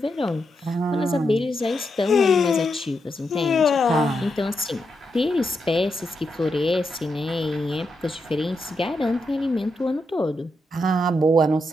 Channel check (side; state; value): both; normal; correlation 0.84